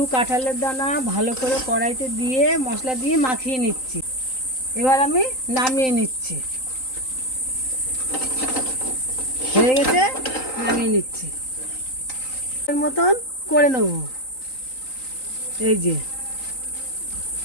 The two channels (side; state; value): right; late; 3.9 ms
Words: কাঁঠালের দানা ভালো করে কড়াইতে দিয়ে মশলা দিয়ে মাখিয়ে নিচ্ছি। এবার আমি নামিয়ে নিচ্ছি, হয়ে গেছে, নামিয়ে নিচ্ছি। এর মতন করে নেব। এই যে